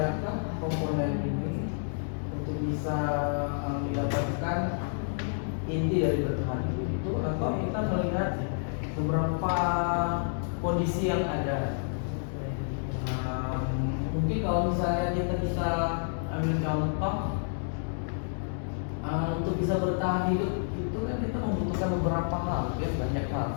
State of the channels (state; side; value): silent; right; digital silence